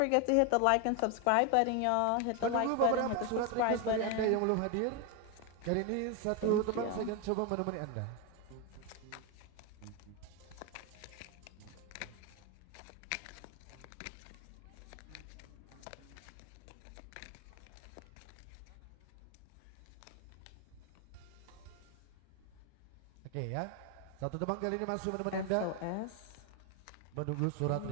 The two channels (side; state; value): both; different; correlation 0.01